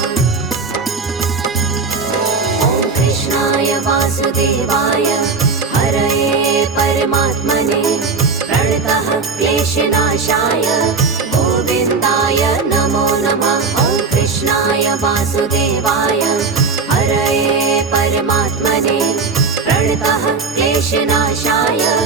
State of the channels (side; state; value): left; quieter; 4.6 dB